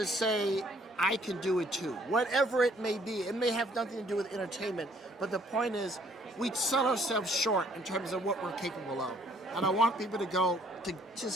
say, I can do it too. Whatever it may be, it may have nothing to do with entertainment, but the point is, we sell ourselves short in terms of what we're capable of. And I want people to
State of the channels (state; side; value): normal; both; correlation 0.62